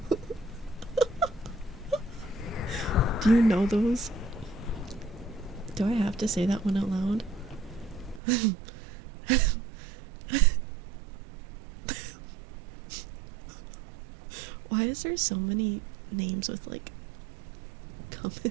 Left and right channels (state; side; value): drops out; left; at 8.2 s